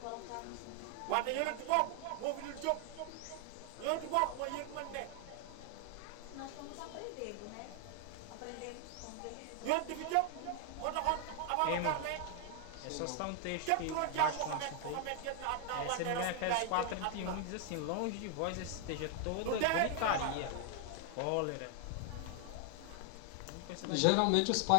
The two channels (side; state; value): both; different; correlation 0.00